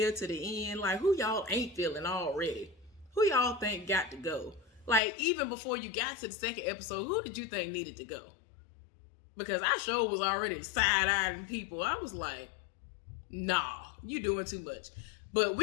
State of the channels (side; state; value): right; drops out; at 5.0 s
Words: to the end. Like, who y'all ain't feeling already? Who y'all think got to go? Like, even before you got to the second episode, who did you think needed to go? Because I sure was already side-eyeing people. I was like, nah, you doing too much. But